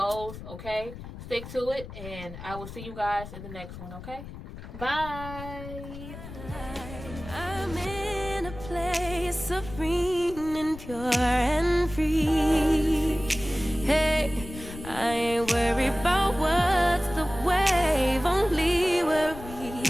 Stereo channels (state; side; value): noise; left; rumble, 12 dB below the sound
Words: okay? Stick to it, and I will see you guys in the next one, okay? Bye! I'm in a place serene and pure and free. Hey, I ain't worried about what